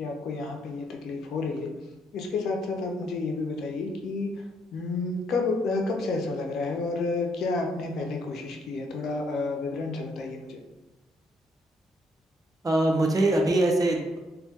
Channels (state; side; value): normal; both; correlation 0.72